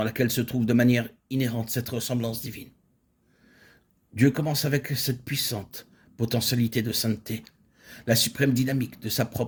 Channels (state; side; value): identical; both; correlation 1.00